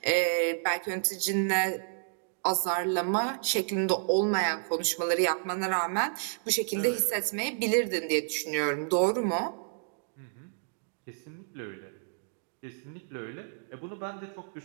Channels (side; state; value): left; silent; digital silence